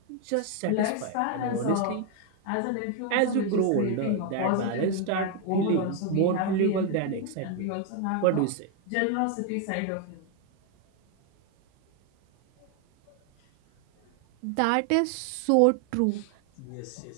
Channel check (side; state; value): both; different; correlation 0.01